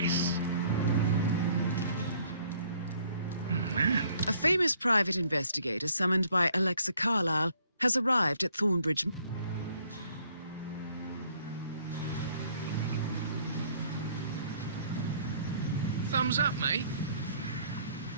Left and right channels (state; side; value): inverted; both; correlation -0.61